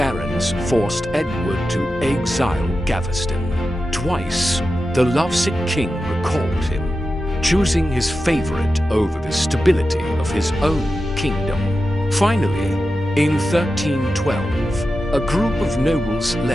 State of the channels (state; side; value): normal; both; correlation 0.92